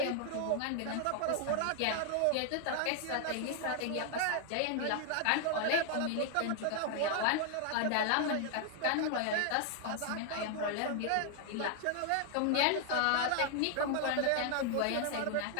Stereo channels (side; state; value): both; different; correlation 0.00